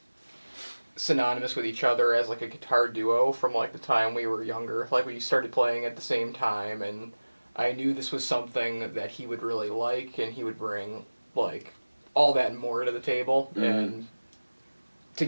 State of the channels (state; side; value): inverted; both; correlation -1.00